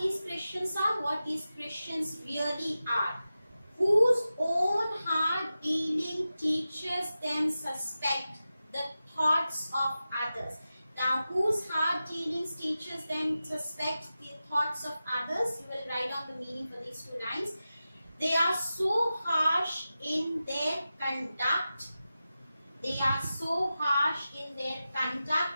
Christians really are, whose own hard dealing teaches them suspect the thoughts of others. Now, whose hard dealings teaches them suspect the thoughts of others? You will write down the meaning for these 2 lines. They are so harsh in their conduct. They are so harsh in their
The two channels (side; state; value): both; inverted; correlation -0.93